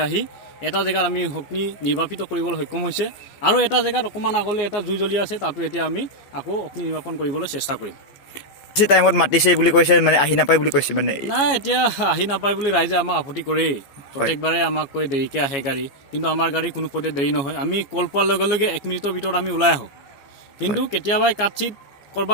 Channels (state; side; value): late; right; 14 ms